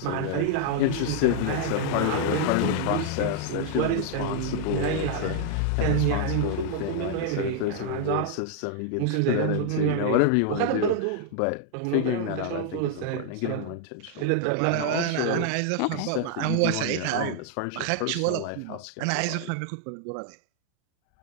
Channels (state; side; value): different; both; correlation 0.00